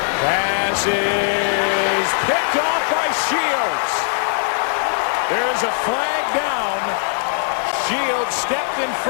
Pass is picked off by Shields. There is a flag down. Shields stepped in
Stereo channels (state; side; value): silent; right; digital silence